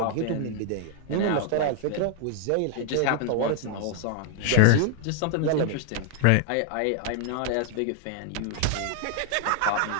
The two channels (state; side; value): different; both; correlation 0.00